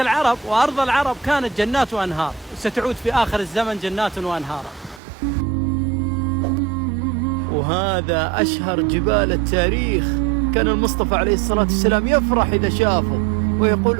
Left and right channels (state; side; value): drops out; left; at 5.0 s